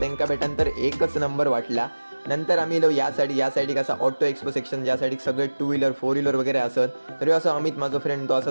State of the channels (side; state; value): both; inverted; correlation -1.00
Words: भेटानंतर एकच नंबर वाटला. नंतर आम्ही या साईड असा ऑटो एक्सपो सेक्शन, ज्या साईड सगळे 2 व्हीलर 4 व्हीलर वगैरे असत. तरी असं अमित माझा फ्रेंड तो असा